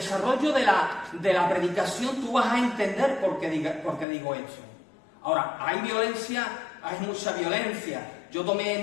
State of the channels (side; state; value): right; drops out; at 4.0 s